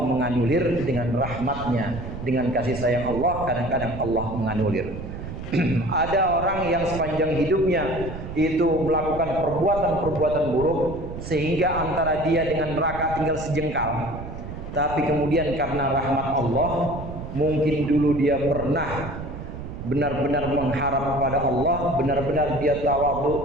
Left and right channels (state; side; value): noise; right; rumble, 9 dB below the sound